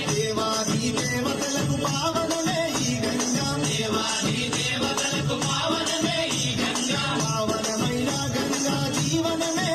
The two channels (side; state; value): left; noise; hum, 26 dB below the sound